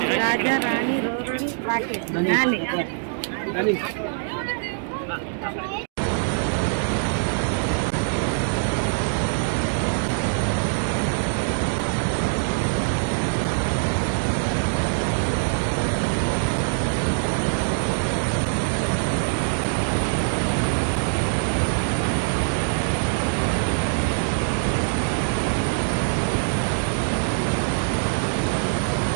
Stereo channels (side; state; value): left; silent; digital silence